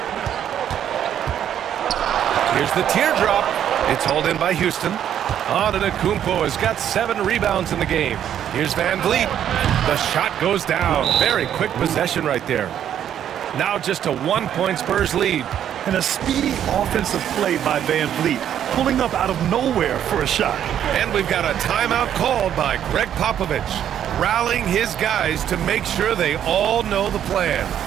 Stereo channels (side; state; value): left; quieter; 10.0 dB